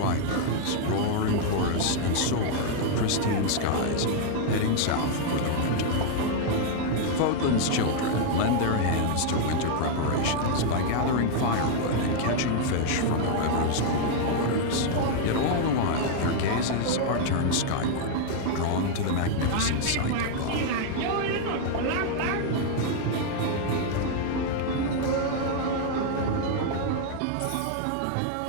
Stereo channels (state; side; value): different; both; correlation 0.00